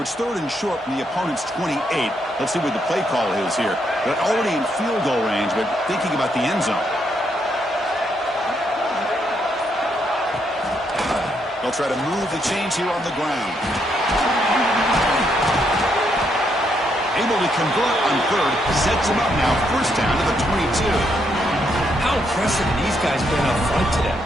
it's 3rd and short from the opponent's 28. Let's see what the play call is here. They're already in field goal range, but thinking about the end zone. They'll try to move the chains here on the ground. Able to convert on 3rd. Sets him up now. First down to the 22. How impressive have these guys been up front today?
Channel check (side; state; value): both; normal; correlation 0.76